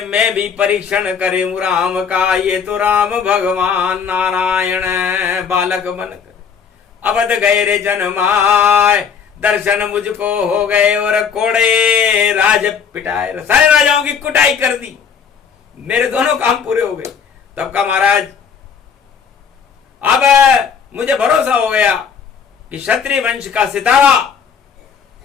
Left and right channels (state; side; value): quieter; right; 6.7 dB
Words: मैं भी परीक्षण करूं राम का, ये तो राम भगवान नारायण बालक बनकर अवध गए रे जन्माए। दर्शन मुझको हो गए और कोड़े राज पिटाए, सारे राजाओं की कुटाई कर दी, मेरे दोनों काम पूरे हो गए। तब का महाराज अब मुझे भरोसा हो गया कि क्षत्रिय वंश का सितारा